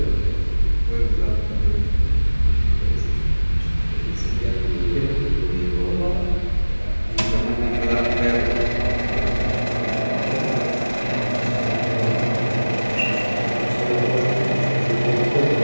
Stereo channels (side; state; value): both; inverted; correlation -1.00